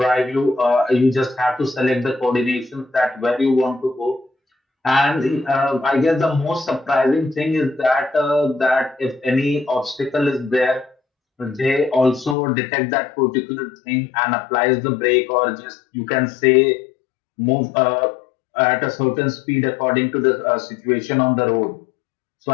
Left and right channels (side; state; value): right; drops out; at 12.4 s